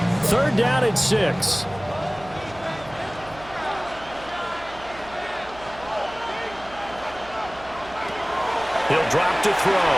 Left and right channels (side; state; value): right; noise; hum, 19 dB below the sound